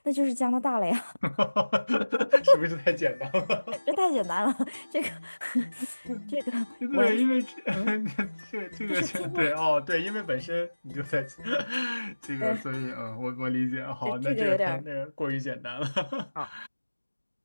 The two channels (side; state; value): both; inverted; correlation -1.00